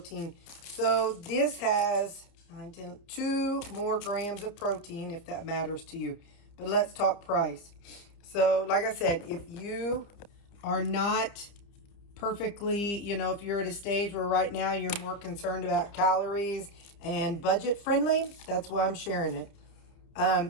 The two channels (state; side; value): late; right; 30 ms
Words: So this has 2 more grams of protein, if that matters to you. But let's talk price. So like I said, if you are not perfectly, if you're at a stage where right now you're more concerned about calories and budget friendly, that's why I'm sharing it.